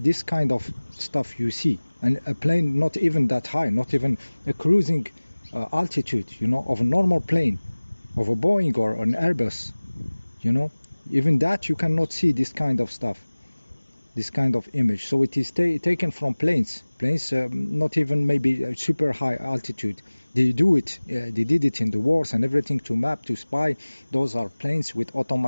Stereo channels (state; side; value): inverted; both; correlation -1.00